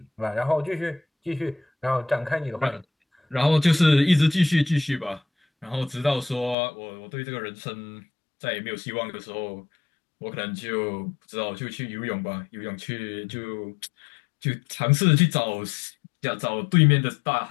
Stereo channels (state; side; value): drops out; right; at 6.6 s